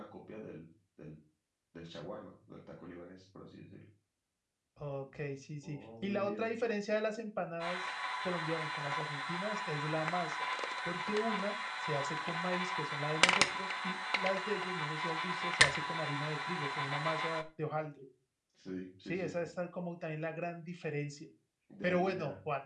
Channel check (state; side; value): identical; both; correlation 1.00